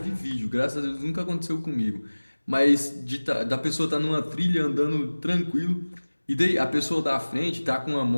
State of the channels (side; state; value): both; inverted; correlation -1.00